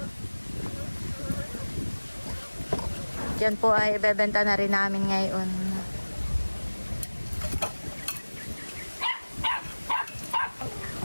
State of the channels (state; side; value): inverted; both; correlation -1.00